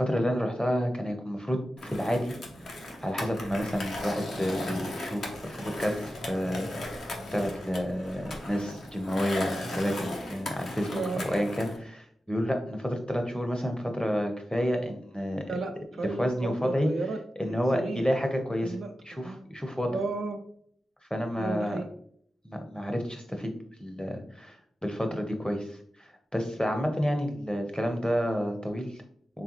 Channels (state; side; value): normal; both; correlation 0.93